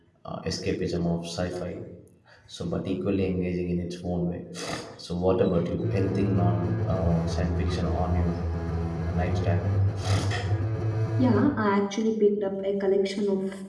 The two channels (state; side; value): identical; both; correlation 1.00